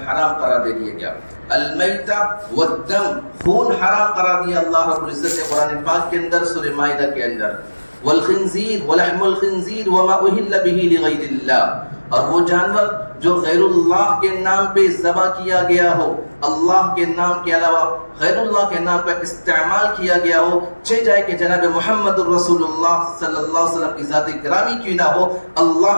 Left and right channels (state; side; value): inverted; both; correlation -1.00